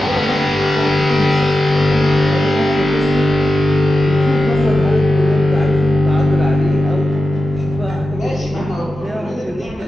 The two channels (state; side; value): normal; both; correlation 0.91